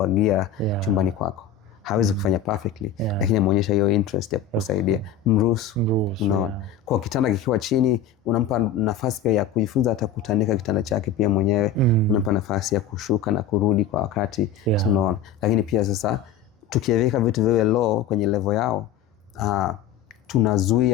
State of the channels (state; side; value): quieter; right; 7.3 dB